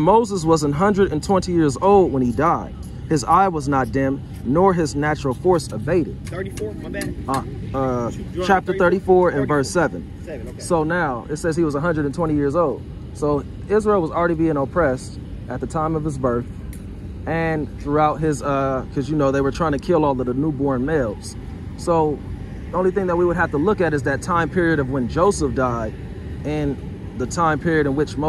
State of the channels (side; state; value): both; identical; correlation 1.00